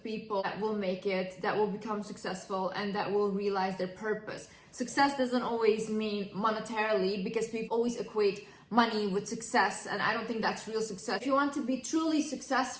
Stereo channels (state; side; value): identical; both; correlation 1.00